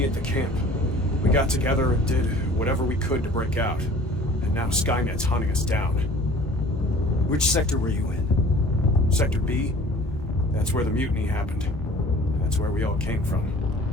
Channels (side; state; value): both; normal; correlation 0.48